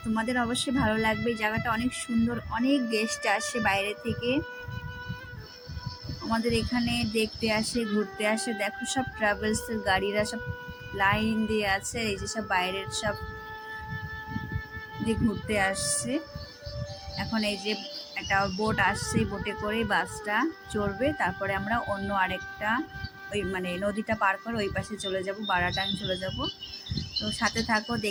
তোমাদের অবশ্যই ভালো লাগবে। জায়গাটা অনেক সুন্দর, অনেক গেস্ট আসে বাইরে থেকে আমাদের এখানে দেখতে আসে, ঘুরতে আসে। দেখো সব ট্রাভেলসের গাড়িরা সব লাইন দিয়ে আছে। এই যে সব বাইরের সব দিয়ে ঘুরতে আসছে। এখন এই যে একটা বোট আসছে, বোটে করে বাসটা চড়বে, তারপরে আমরা অন্য আরেকটা ওই নদীটা পার করে ওই পাশে চলে যাব, বারাটাং চলে যাব। তো সাথে থাকো,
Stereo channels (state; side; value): identical; both; correlation 1.00